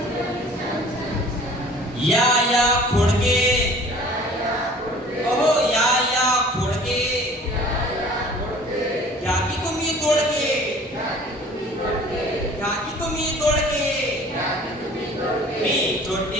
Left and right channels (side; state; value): both; normal; correlation 0.48